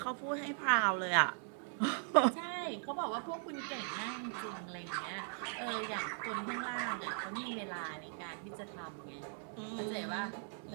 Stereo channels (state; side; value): silent; left; 52 dB below the other